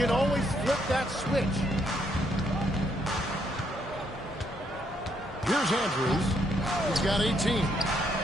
always flip that switch. Here's Andrews. He's got 18.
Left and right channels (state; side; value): normal; both; correlation 0.73